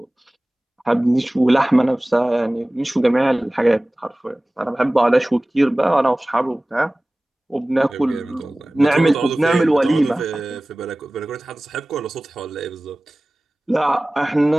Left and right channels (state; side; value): normal; both; correlation 0.98